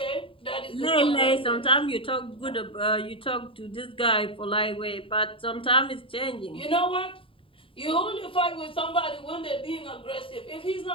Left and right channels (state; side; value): late; right; 0.26 ms